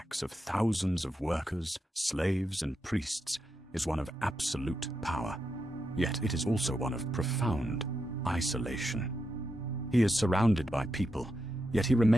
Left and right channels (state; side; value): normal; both; correlation 0.85